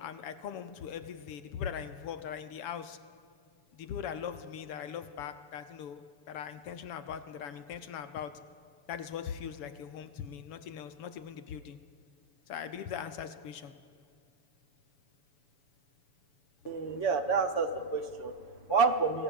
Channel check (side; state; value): right; late; 7.0 ms